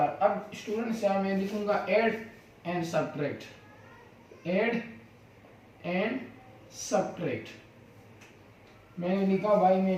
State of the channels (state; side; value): identical; both; correlation 1.00